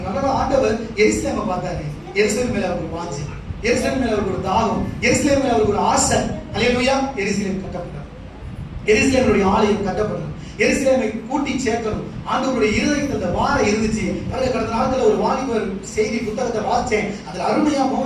ஆண்டவர் எருசலேமை பார்த்தாரு. எருசலேம் மேல அவருக்கு வாஞ்சை, எருசலேம் மேல அவருக்கு ஒரு தாகம், எருசலேம் மேல அவருக்கு ஒரு ஆசை. அல்லேலூயா. எருசலேம் கட்டப்பட்டார். எருசலேமுடைய ஆலயம் கட்டப்பட்டது. எருசலேமை கூட்டி சேர்க்கணும். ஆண்டவருடைய இருதயத்தில் அந்த வாரம் இருந்துச்சு. கடந்த நாட்கள் ஒரு வாலிபர் செய்தி புத்தகத்தை வாசிச்சேன். அதுல அருமையா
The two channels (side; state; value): both; identical; correlation 1.00